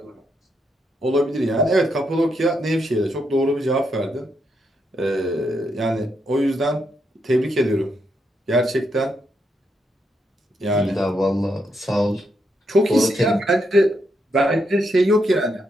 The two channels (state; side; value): normal; both; correlation 0.80